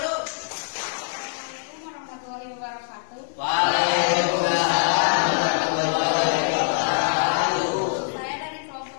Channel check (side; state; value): right; silent; digital silence